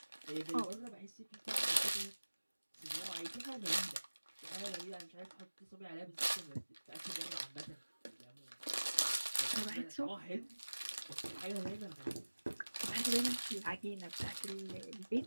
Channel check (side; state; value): both; inverted; correlation -1.00